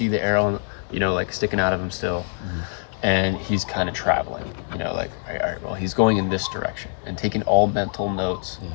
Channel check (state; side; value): silent; right; digital silence